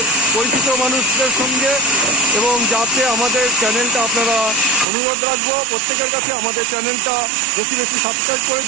পরিচিত মানুষদের সঙ্গে। এবং যাতে আমাদের চ্যানেলটা আপনারা অনুরোধ রাখবো প্রত্যেকের কাছে আমাদের চ্যানেলটা বেশি সাবস্ক্রাইব করে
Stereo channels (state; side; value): drops out; left; at 4.9 s